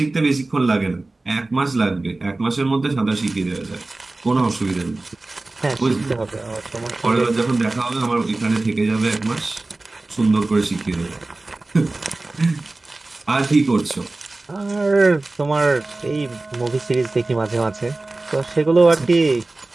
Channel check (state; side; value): quieter; left; 3.1 dB